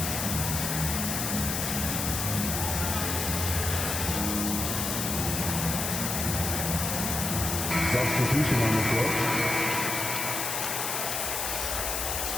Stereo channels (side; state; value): left; noise; hiss, 1 dB below the sound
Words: Substitution on the floor.